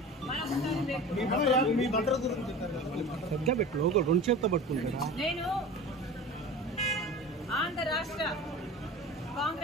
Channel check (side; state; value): both; normal; correlation 0.35